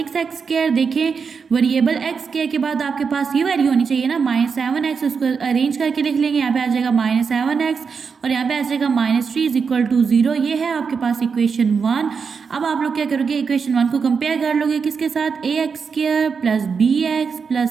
देखें, वेरिएबल x² के बाद आपके पास ये वैल्यू होनी चाहिए ना -7x, उसको अरेंज करके लिख लेंगे। यहाँ पे आ जाएगा -7x और यहाँ पे आ जाएगा -3 = 0। ये है आपके पास इक्वेशन 1। अब आप लोग क्या करोगे, इक्वेशन 1 को कंपेयर कर लोगे किसके साथ, ax² + bx +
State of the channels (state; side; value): quieter; left; 5.7 dB